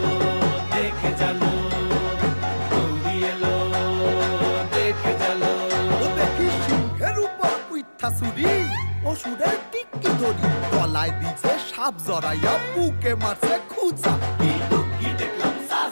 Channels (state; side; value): inverted; both; correlation -1.00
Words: দেখে জানো, গৌরী এলো দেখে জানো। ও দেখি সিংহের উপর উইঠা চুরি, অসুরের টিকি ধরি গলায় দিছে সাপ জড়াইয়া বুকে মারছে খুঁচা। কিন্তু